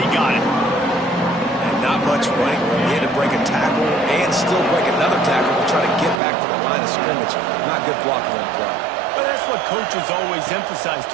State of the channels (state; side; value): drops out; left; at 6.2 s